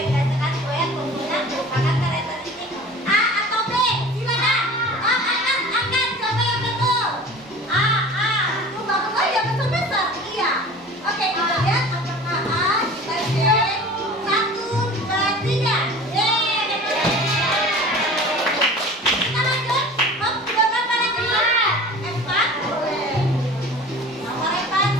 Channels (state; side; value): normal; both; correlation 0.41